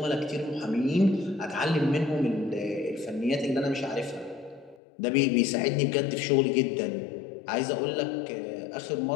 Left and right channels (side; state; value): right; drops out; at 4.8 s